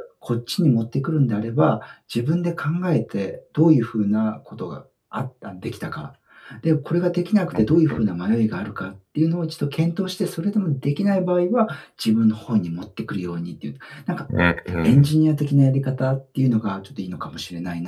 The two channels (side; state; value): both; identical; correlation 1.00